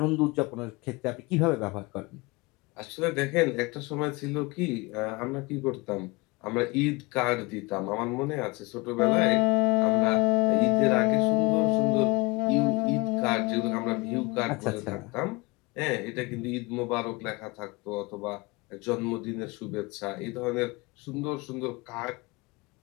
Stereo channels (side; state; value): right; quieter; 25.5 dB